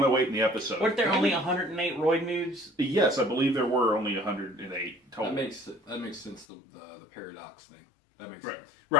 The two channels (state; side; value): drops out; right; at 6.5 s